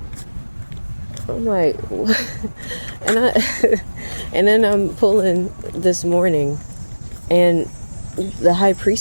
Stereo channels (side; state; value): both; inverted; correlation -1.00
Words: I'm like, what? and I, and then I'm pulling this morning, and the high